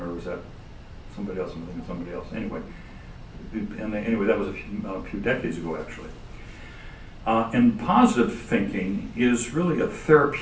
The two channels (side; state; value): both; identical; correlation 1.00